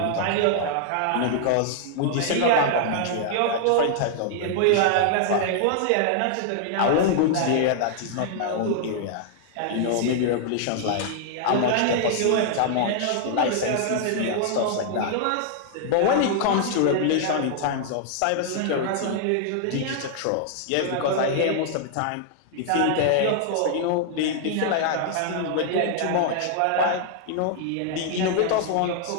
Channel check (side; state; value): both; different; correlation -0.01